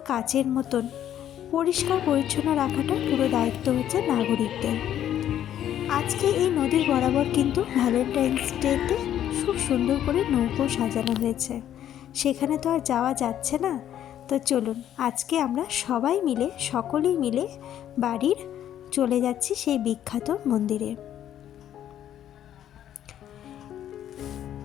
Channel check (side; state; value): right; quieter; 10.9 dB